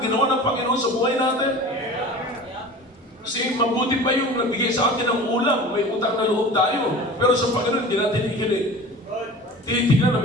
ginawa ng Panginoon sa buhay natin. Kasi mabuti pa yung nagbigay sa atin ng ulam, may utang na loob tayo. Pero sa Panginoon, hindi natin ikilig. Tinitignan na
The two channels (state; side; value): normal; both; correlation 0.38